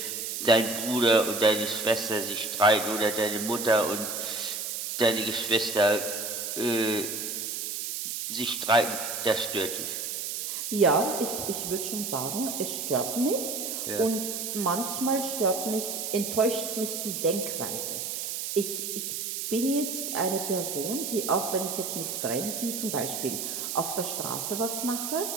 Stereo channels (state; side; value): noise; right; hiss, 4 dB below the sound